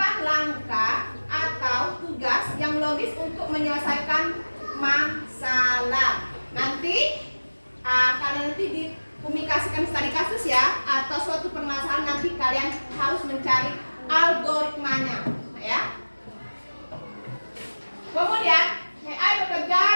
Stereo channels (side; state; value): both; inverted; correlation -1.00